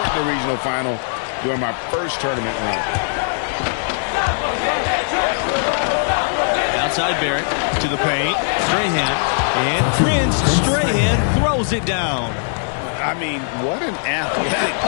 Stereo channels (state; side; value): silent; right; 66 dB below the other